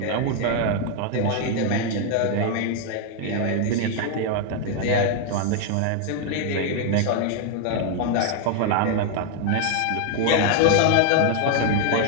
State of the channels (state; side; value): different; both; correlation 0.00